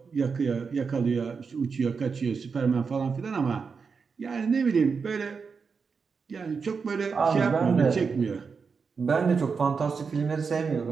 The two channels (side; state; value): left; quieter; 5.4 dB